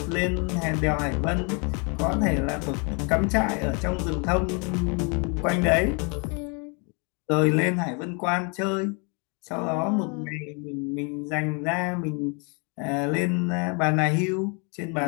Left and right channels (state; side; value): quieter; right; 34.4 dB